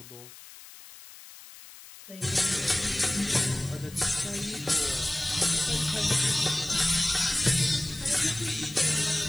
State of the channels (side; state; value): left; noise; hiss, 18 dB below the sound